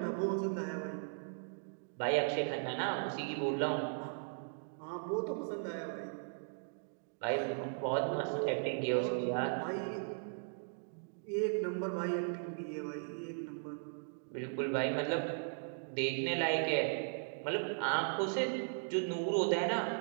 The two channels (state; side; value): silent; left; digital silence